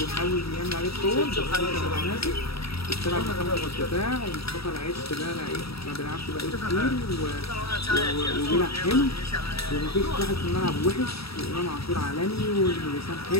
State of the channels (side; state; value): right; late; 0.77 ms